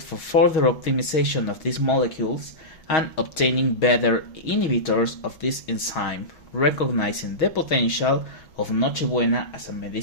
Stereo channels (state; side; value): late; right; 6.3 ms